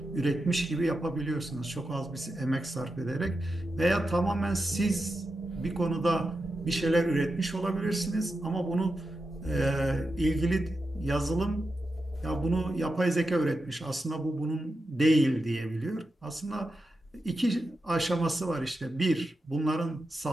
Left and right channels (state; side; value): normal; both; correlation 0.89